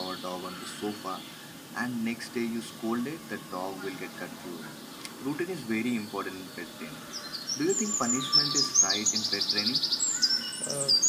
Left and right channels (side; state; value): both; identical; correlation 1.00